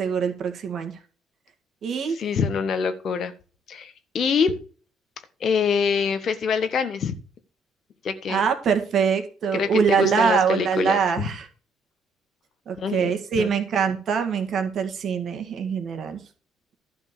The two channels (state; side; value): normal; both; correlation 0.67